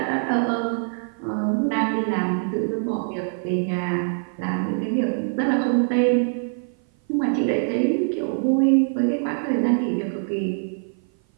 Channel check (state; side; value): silent; left; 56 dB below the other